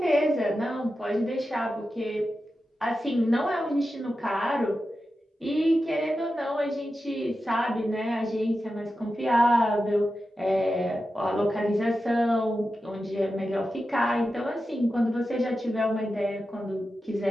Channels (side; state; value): both; normal; correlation 0.91